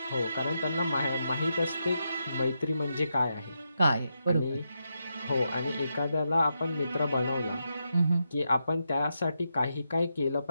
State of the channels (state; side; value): inverted; both; correlation -0.84